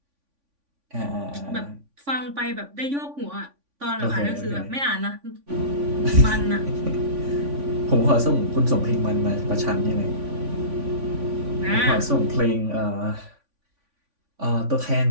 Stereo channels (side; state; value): left; late; 3.5 ms